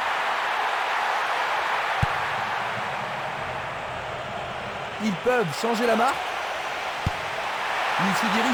Ils peuvent changer la marque. Il se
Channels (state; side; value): identical; both; correlation 1.00